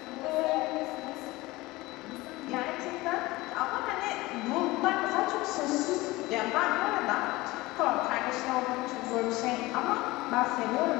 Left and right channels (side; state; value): right; quieter; 20.3 dB